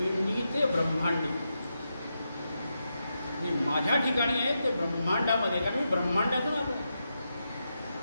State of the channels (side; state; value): both; inverted; correlation -0.86